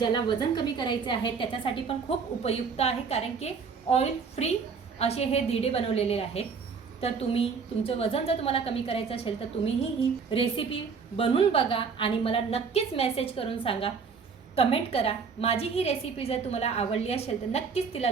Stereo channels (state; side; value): quieter; left; 5.5 dB